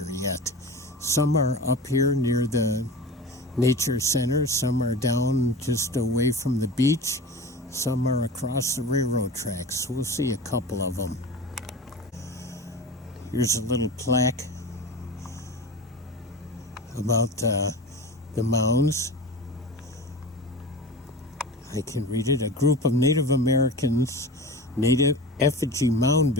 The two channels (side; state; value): both; normal; correlation 0.32